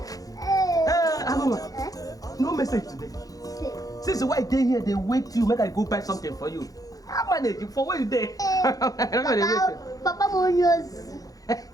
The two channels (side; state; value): right; late; 0.17 ms